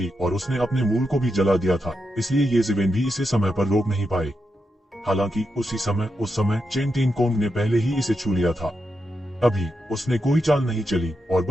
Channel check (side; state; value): both; normal; correlation 0.86